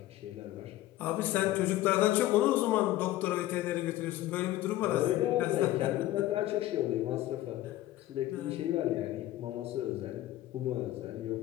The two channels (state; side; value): quieter; right; 15.2 dB